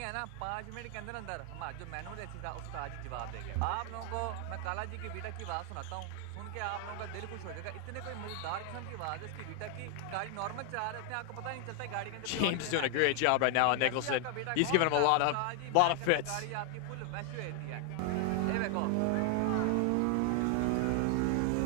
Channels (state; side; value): different; both; correlation 0.00